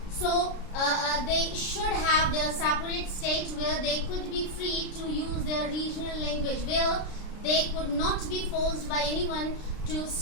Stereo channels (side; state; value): right; late; 33 ms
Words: So they should have their separate state where they could be free to use their regional language, where they could not be forced by anyone to